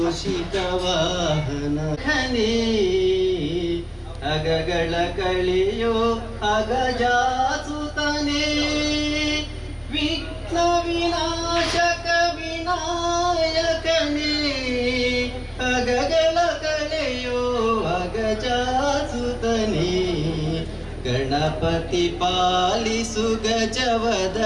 ವಾಹನ ಖನೇ ಅಗಗಳ ಕಳೆಯೋ ಅಗಜಾಸುತನೇ ವಿಘ್ನ ವಿನಾಶಕ ವಿನಾಯಕನೇ ಅಗಗಳ ಕಳೆಯೋ ಅಗಜಾಸುತನೇ ಗಣಪತಿ ಪಾಲಿಸು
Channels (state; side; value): identical; both; correlation 1.00